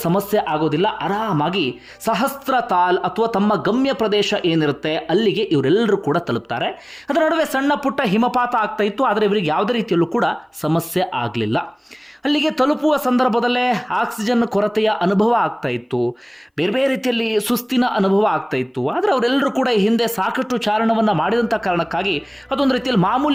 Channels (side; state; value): both; identical; correlation 1.00